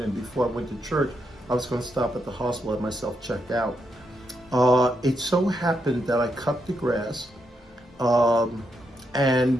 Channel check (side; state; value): both; normal; correlation 0.81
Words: before I went to church, I was going to stop at the hospital and have myself checked out. It so happened that I cut the grass,